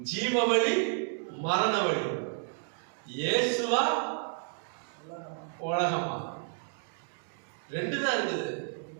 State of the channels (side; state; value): left; silent; 57 dB below the other